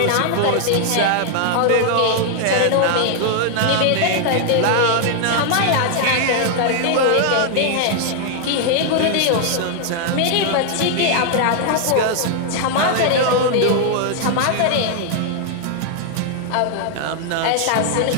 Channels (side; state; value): both; different; correlation 0.00